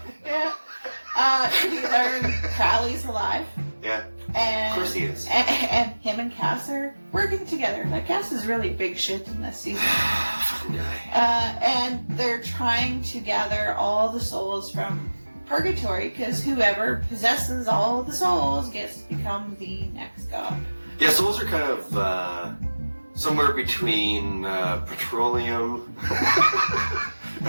Yeah. We learn Crowley's alive. Yeah. And, of course he is. And him and Cass are working together. Like, Cass is really big shit in this season. Fucking guy. And they're trying to gather all the souls from purgatory, because whoever possesses all the souls gets to become the next god. Yeah, souls are kind of somewhere between petroleum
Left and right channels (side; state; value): both; inverted; correlation -1.00